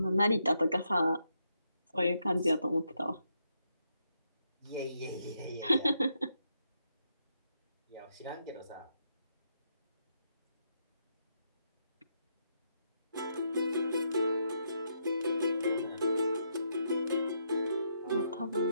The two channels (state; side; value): inverted; both; correlation -0.79